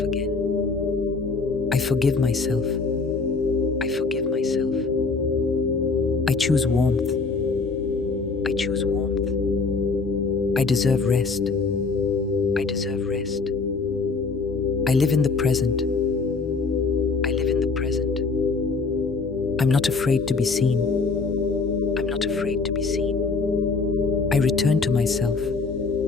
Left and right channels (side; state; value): right; quieter; 4.3 dB